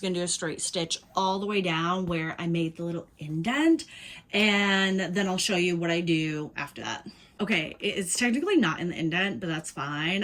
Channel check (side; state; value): both; identical; correlation 1.00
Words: gonna do a straight stitch all the way down where I made the little indent, and then I'll show you what I do after that. Okay, it's technically not in the indent, but that's fine.